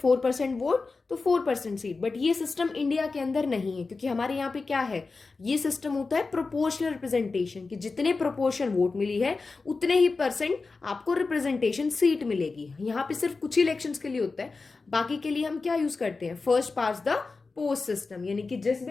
वोट तो 4% सीट। बट ये सिस्टम इंडिया के अंदर नहीं है, क्योंकि हमारे यहाँ पे क्या है, ये सिस्टम होता है प्रोपोर्शनल रिप्रेजेंटेशन, कि जितने प्रोपोर्शन वोट मिली है उतने ही परसेंट आपको रिप्रेजेंटेशन सीट मिलेगी। यहाँ पे सिर्फ कुछ ही इलेक्शंस के लिए होता है, बाकी के लिए हम क्या यूज करते हैं, first pass the post system, यानी कि जिस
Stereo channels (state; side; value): quieter; right; 4.1 dB